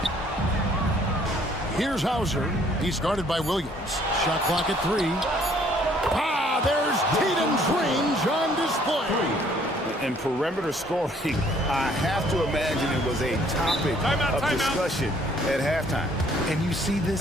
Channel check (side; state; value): both; normal; correlation 0.61